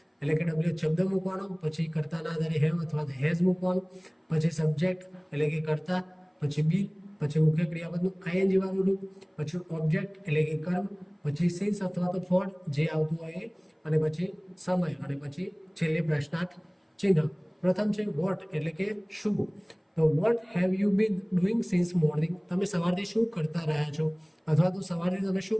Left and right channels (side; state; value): both; identical; correlation 1.00